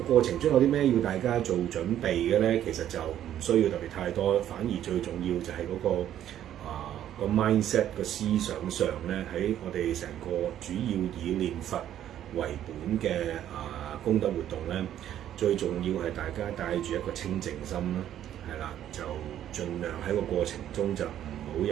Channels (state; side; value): quieter; left; 11.2 dB